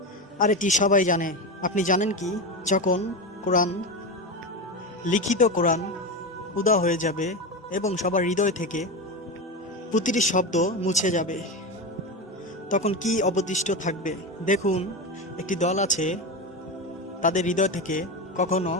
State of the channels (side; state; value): both; normal; correlation 0.19